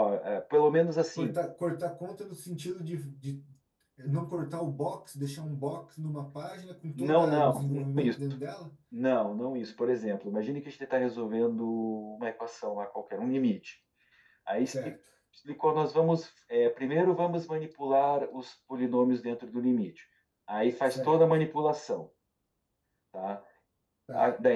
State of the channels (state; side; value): identical; both; correlation 1.00